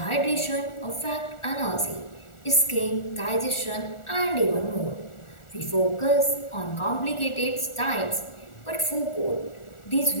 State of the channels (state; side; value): late; right; 1.4 ms